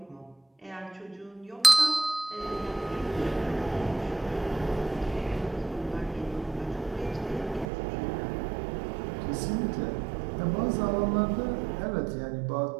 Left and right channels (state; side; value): drops out; left; at 7.7 s